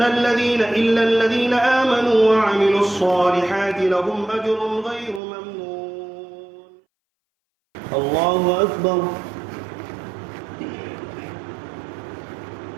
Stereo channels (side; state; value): left; drops out; at 5.2 s